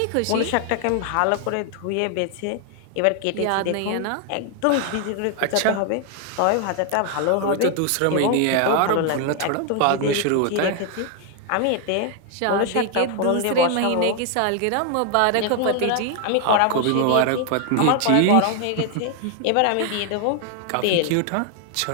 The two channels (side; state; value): both; different; correlation 0.00